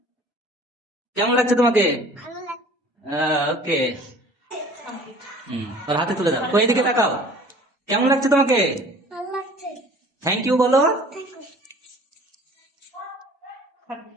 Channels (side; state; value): both; normal; correlation 0.48